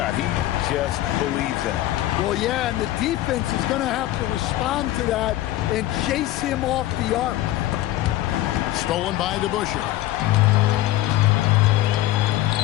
He just believes in it. Well, yeah, and the defense is going to have to respond to that and chase him off the arc. Stolen by DeBusschere.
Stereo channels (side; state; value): right; quieter; 15.1 dB